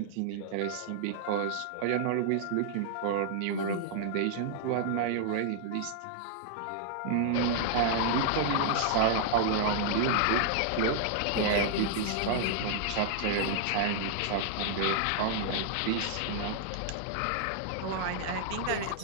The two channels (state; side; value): different; both; correlation -0.01